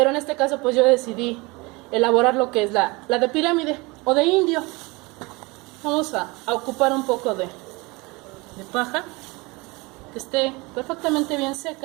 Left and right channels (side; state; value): left; quieter; 25.0 dB